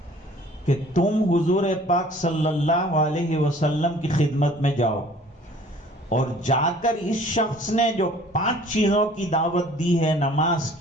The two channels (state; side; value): normal; both; correlation 0.52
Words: کہ تم حضور پاک صلی اللہ علیہ وسلم کی خدمت میں جاؤ اور جا کر اس شخص نے جو 5 چیزوں کی دعوت دی ہے، نماز